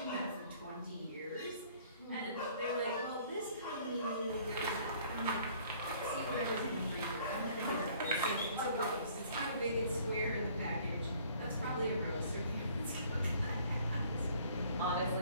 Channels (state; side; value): inverted; both; correlation -0.57